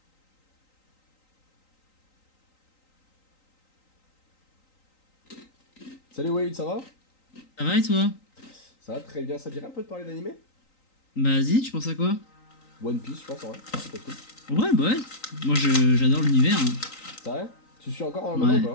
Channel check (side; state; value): right; late; 3.9 ms